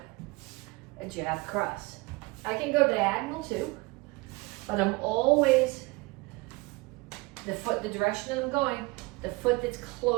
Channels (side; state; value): left; quieter; 24.2 dB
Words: a jab cross. I can go diagonal too, but I'm always, the direction that I'm going, the foot that's